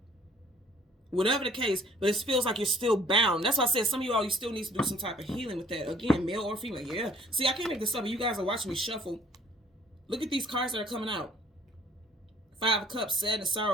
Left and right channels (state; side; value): normal; both; correlation 0.57